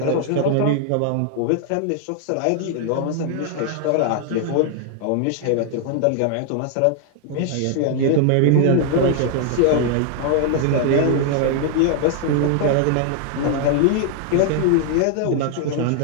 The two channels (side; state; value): both; different; correlation 0.00